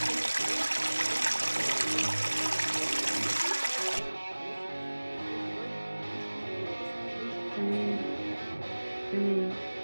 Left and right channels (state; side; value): inverted; both; correlation -1.00